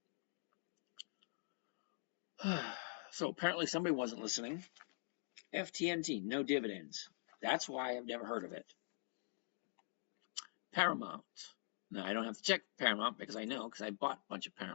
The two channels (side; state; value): right; silent; digital silence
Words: So apparently somebody wasn't listening. FTNT, no dividends. That's why I've never heard of it. Paramount. Now I don't have to check Paramount because I know, because I bought a bunch of